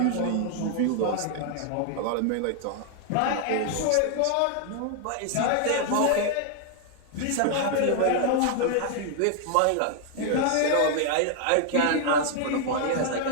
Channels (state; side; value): different; both; correlation 0.00